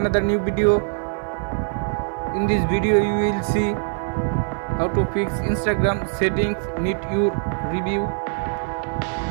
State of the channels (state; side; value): silent; left; 55 dB below the other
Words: new video. In this video you will see how to fix Instagram settings need your review.